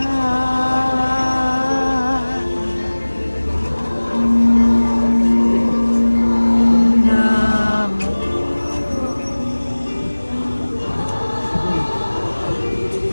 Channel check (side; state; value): both; inverted; correlation -1.00